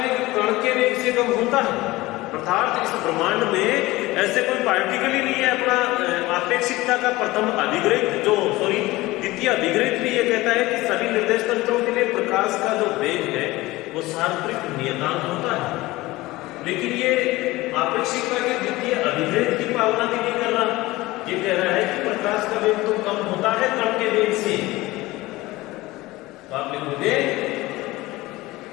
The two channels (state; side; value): quieter; right; 19.4 dB